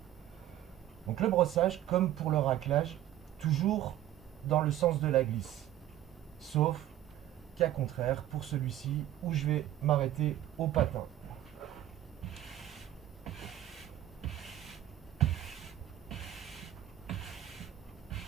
Donc le brossage, comme pour le raclage, toujours dans le sens de la glisse. Sauf cas contraire pour celui-ci où je vais m'arrêter au patin.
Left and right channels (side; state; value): left; quieter; 12.8 dB